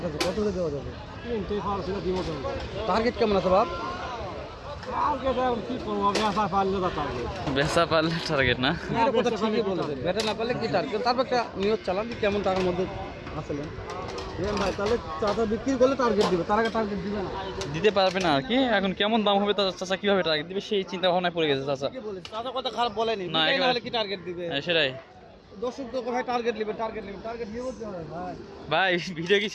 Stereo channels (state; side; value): identical; both; correlation 1.00